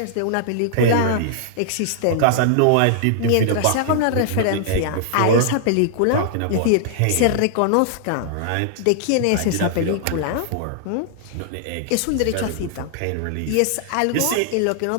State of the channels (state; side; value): different; both; correlation -0.01